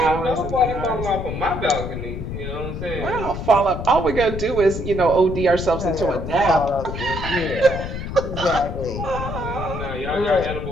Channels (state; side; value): noise; left; rumble, 6 dB below the sound